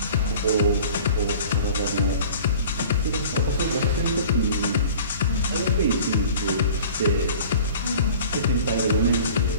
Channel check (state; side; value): inverted; both; correlation -0.44